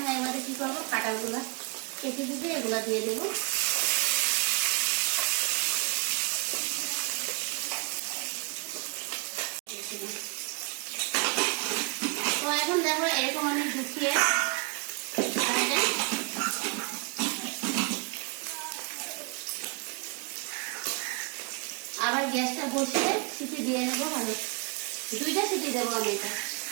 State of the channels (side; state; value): left; quieter; 31.7 dB